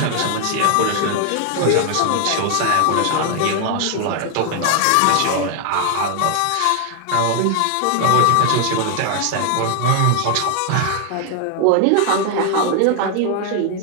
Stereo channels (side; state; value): both; different; correlation 0.01